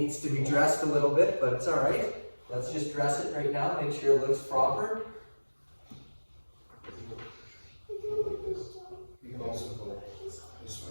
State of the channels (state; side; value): inverted; both; correlation -1.00